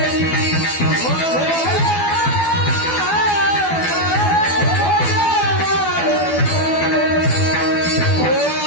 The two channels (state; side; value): late; right; 12 ms